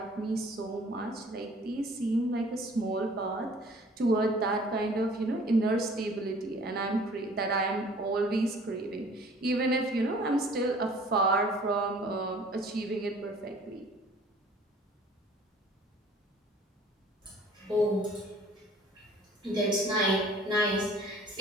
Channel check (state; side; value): normal; both; correlation 0.52